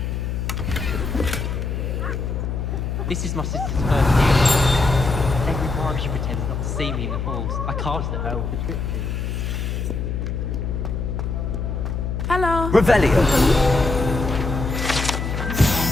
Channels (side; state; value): left; noise; hum, 2 dB below the sound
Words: This is my sister's first year. Every time she pretends not to see me in the halls, I cast at her with the trip. Hello. Revelio.